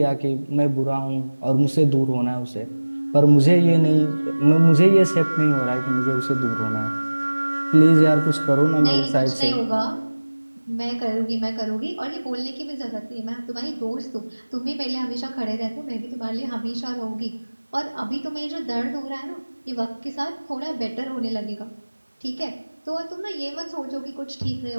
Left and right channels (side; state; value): both; inverted; correlation -1.00